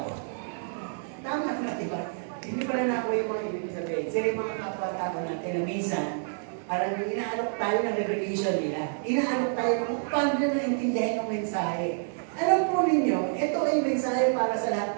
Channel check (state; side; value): silent; left; 59 dB below the other